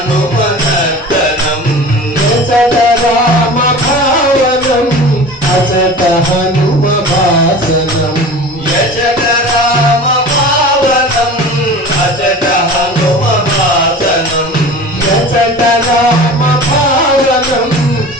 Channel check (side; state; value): both; normal; correlation 0.37